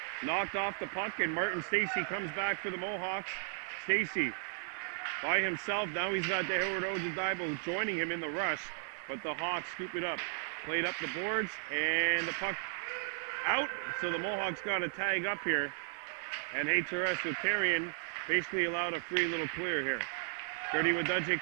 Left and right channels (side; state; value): left; silent; digital silence